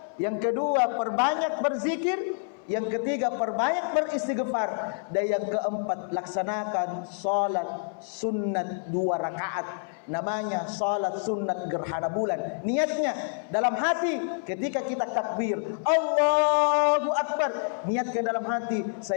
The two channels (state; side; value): silent; right; 58 dB below the other